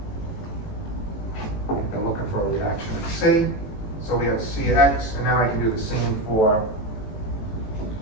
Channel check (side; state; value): right; late; 18 ms